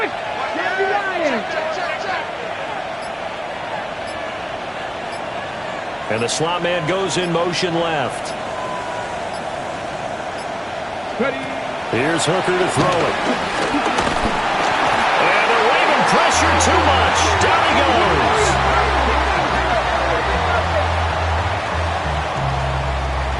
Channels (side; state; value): both; identical; correlation 1.00